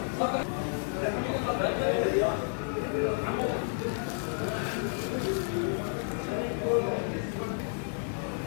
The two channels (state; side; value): silent; right; digital silence